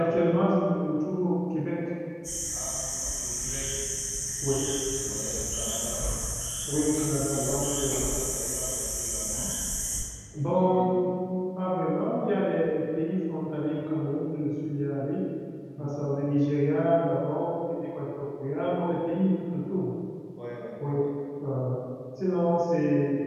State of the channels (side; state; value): both; identical; correlation 1.00